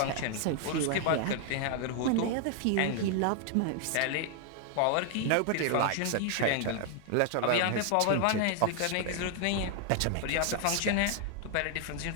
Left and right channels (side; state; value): both; different; correlation 0.00